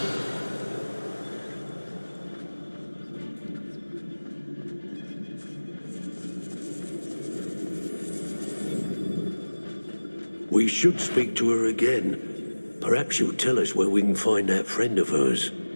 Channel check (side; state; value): both; inverted; correlation -1.00